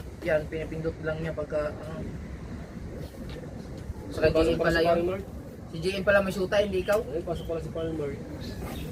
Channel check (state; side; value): identical; both; correlation 1.00